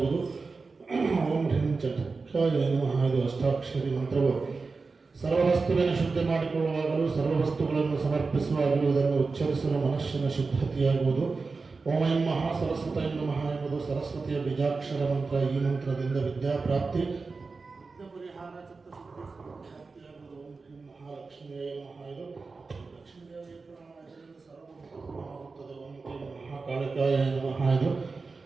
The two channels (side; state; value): left; quieter; 4.2 dB